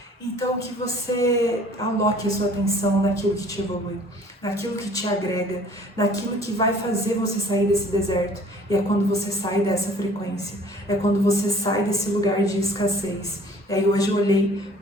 Então que você aloque a sua atenção naquilo que te evolui, naquilo que te agrega, naquilo que vai fazer você sair desse deserto. E é quando você sai dessa frequência, é quando você sai desse lugar de escassez. E aí hoje eu olhei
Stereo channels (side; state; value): both; normal; correlation 0.52